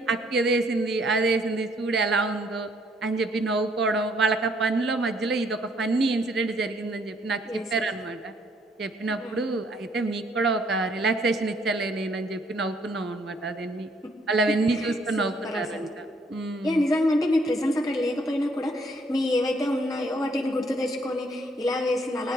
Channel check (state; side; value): normal; both; correlation 0.67